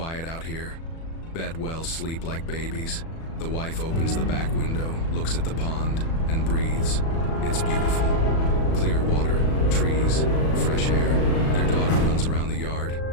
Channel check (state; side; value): late; right; 37 ms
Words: out here. Bet well sleep like babies." The wife opens the back window, looks at the pond, and breathes. It's beautiful. Clear water, trees, fresh air. Their daughter runs around the yard,